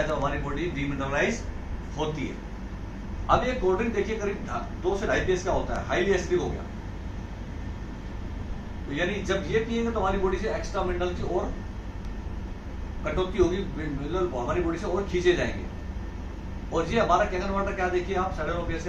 जब हमारी बॉडी डीमिनरलाइज होती है। अब ये कोल्ड ड्रिंक देखिए करीब 2 से 2.5 pH का होता है, हाईली एसिडिक हो गया। तो यानी जब ये पिएंगे तो हमारी बॉडी से एक्स्ट्रा मिनरल की और कटौती होगी, मिनरल हमारी बॉडी से और खींचे जाएंगे। और ये हमारा कैंगन वाटर क्या देखिए आप, 7.5 pH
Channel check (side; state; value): both; identical; correlation 1.00